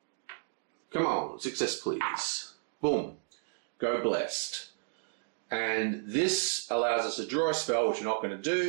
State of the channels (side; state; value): left; silent; digital silence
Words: Come on, success please. Boom. Go blessed. And this allows us to draw a spell, which we're not going to